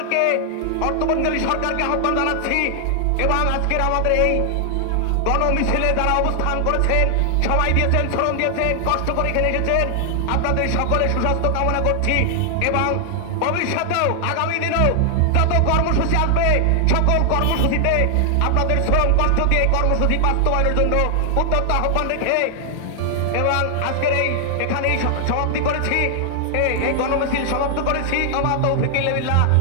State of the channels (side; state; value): both; different; correlation 0.00